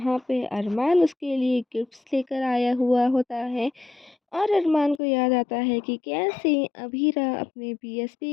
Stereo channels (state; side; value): drops out; right; at 5.0 s